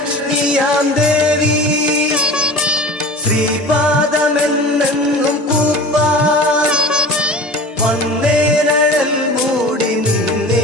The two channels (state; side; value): normal; both; correlation 0.38